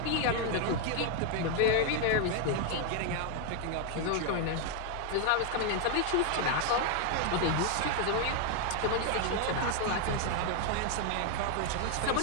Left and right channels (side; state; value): both; different; correlation 0.01